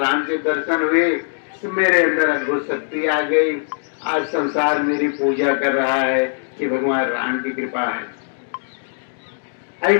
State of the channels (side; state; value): right; silent; 65 dB below the other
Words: के दर्शन हुए तो मेरे अंदर अद्भुत शक्ति आ गई। आज संसार मेरी पूजा कर रहा है कि भगवान राम की कृपा है।